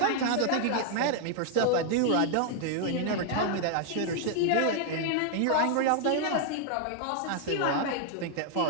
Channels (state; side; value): different; both; correlation 0.00